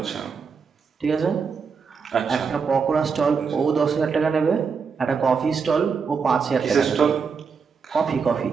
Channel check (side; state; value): left; quieter; 5.6 dB